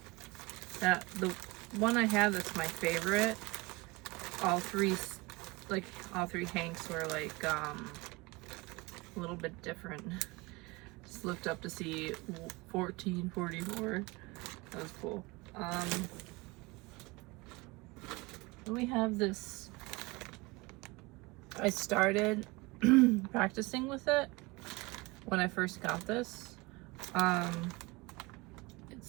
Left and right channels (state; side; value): quieter; left; 23.7 dB